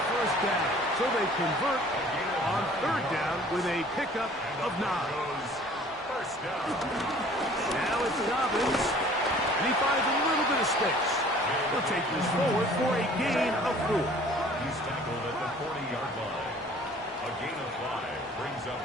1st down. So they convert on 3rd down with a pickup of 9. First down. Now it's Dobbins, and he finds a little bit of space. He'll take this forward for a gain of 4. He's tackled at the 40-yard line. A gain of 5 brings up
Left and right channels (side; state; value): both; normal; correlation 0.51